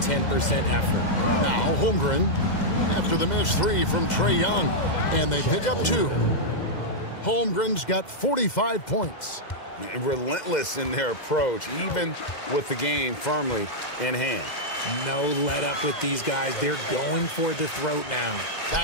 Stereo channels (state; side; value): late; right; 2.1 ms